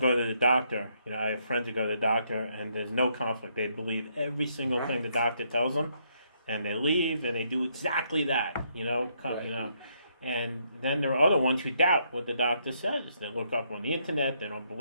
to the doctor, I have friends who go to the doctor and there's no conflict. They believe every single thing the doctor tells them, and they leave and they do exactly that. And then there are other ones who doubt what the doctor says. They look up on the internet. They don't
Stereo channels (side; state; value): both; inverted; correlation -0.74